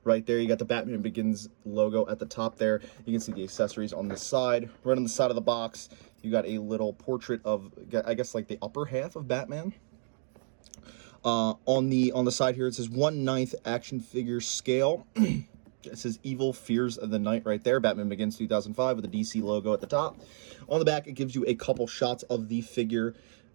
right there. You got the Batman Begins logo at the top there. You can see the accessories on the side. Right on the side of the box, you got a little portrait of, I guess, like the upper half of Batman. On the side here, it says 1/9 action figure scale. It says Evil Fears of the Night right there. Batman Begins 2005 with the DC logo at the top. On the back, it gives you a couple shots of the figure.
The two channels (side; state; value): left; silent; digital silence